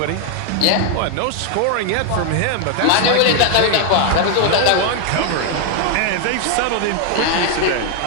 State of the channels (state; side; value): different; both; correlation 0.00